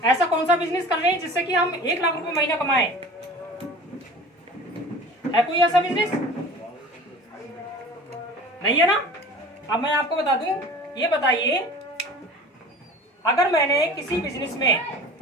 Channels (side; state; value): both; normal; correlation 0.41